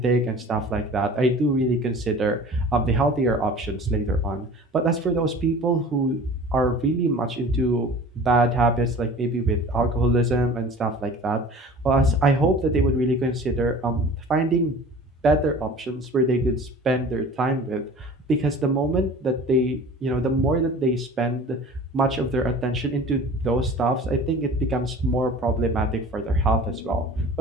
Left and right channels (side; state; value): both; normal; correlation 0.42